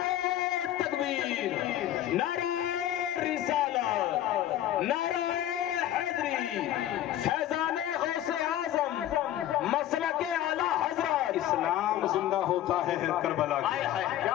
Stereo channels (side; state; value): right; quieter; 12.5 dB